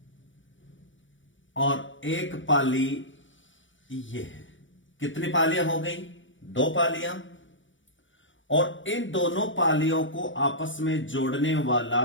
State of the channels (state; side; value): late; right; 0.56 ms